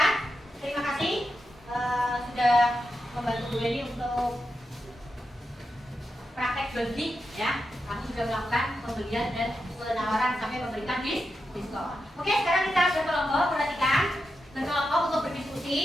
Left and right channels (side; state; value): both; normal; correlation 0.87